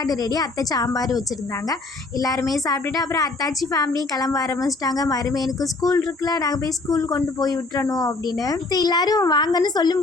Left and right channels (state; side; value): quieter; right; 3.4 dB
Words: ரெடி. அத்தை சாம்பார் வச்சுருந்தாங்க. எல்லாருமே சாப்பிட்டுட்டு அப்புறம் அத்தாச்சி ஃபேமிலியும் கிளம்ப ஆரம்பிச்சிட்டாங்க. மருமையனுக்கு ஸ்கூல் இருக்குல்ல, நாங்கள் போய் ஸ்கூல் கொண்டு போய் விட்டுறணும் அப்படின்னு. எல்லாரும் வாங்கன்னு சொல்லும்